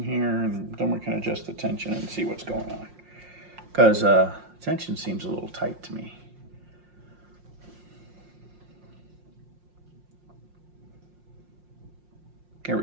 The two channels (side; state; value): left; late; 5.6 ms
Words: here, and then we can adjust the tension and see what's going on. Because tension seems a little tight to me. Here